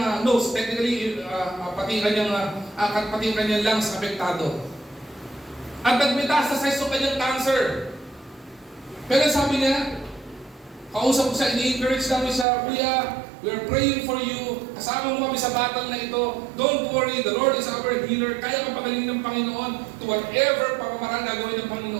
nose, technically pati yung kanyang lungs apektado. At nag-metastasize yung kanyang cancer. Pero sabi niya, kausap ko siya, ini-encourage namin siya, Kuya, we are praying for you. Kasama mo kami sa battle na ito. Don't worry, the Lord is our healer. Kaya kang pagalingin ng Panginoon to whatever pamamaraan gagawin ng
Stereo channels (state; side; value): drops out; left; at 12.5 s